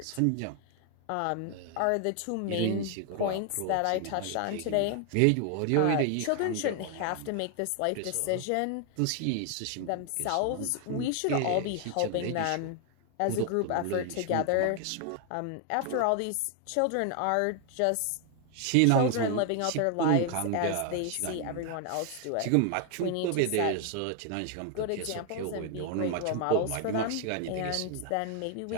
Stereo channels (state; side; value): different; both; correlation 0.00